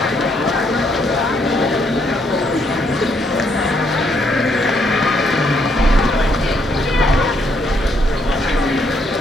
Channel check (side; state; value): both; normal; correlation 0.72